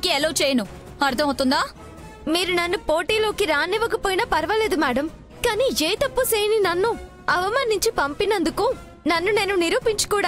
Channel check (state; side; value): identical; both; correlation 1.00